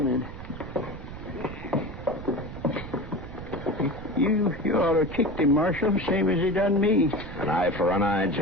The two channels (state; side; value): noise; right; rumble, 11 dB below the sound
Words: then. You ought to kicked him, Marshal, same as he done me. An eye for an eye,